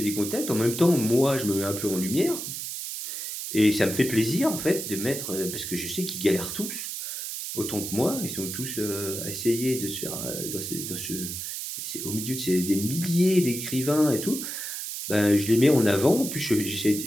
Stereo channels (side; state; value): right; noise; hiss, 6 dB below the sound